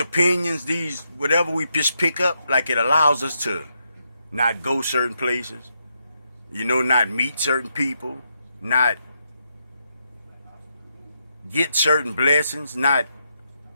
these whatever we just pick up, like it allows us to not go certain places, you know, not meet certain people, not get certain blessings, not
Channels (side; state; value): both; inverted; correlation -0.81